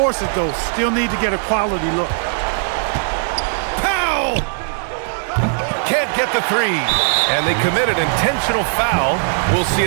it, though. Still need to get a quality look. Foul! Can't get the 3. And they commit an intentional foul. We'll see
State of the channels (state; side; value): silent; left; 67 dB below the other